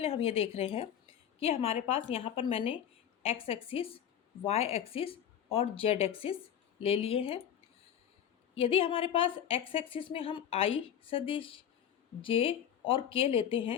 हम ये देख रहे हैं कि हमारे पास यहाँ पर मैंने एक्स एक्सिस, वाई एक्सिस और जेड एक्सिस ले लिए हैं। यदि हमारे पास एक्स एक्सिस में हम आई सदिश, जे और के लेते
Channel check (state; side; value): quieter; right; 9.5 dB